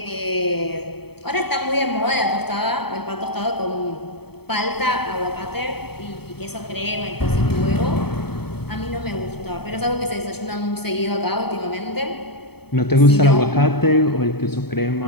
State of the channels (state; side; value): late; right; 0.97 ms